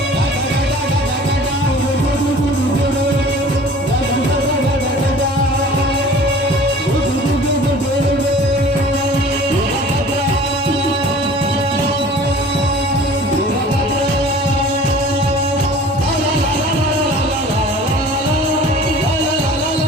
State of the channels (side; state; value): both; normal; correlation 0.46